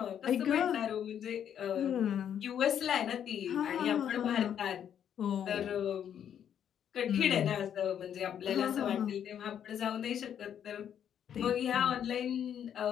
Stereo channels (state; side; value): quieter; right; 9.2 dB